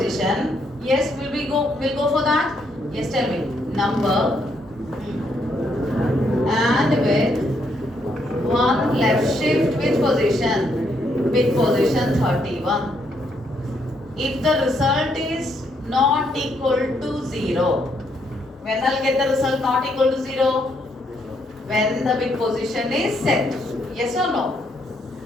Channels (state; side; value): normal; both; correlation 0.74